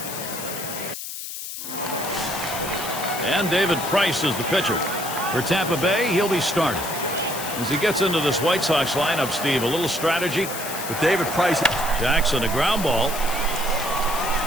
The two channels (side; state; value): left; noise; hiss, 8 dB below the sound